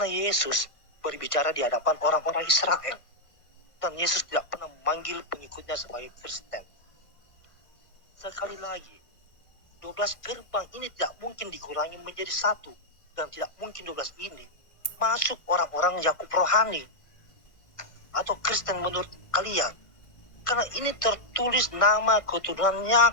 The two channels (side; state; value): right; late; 1.6 ms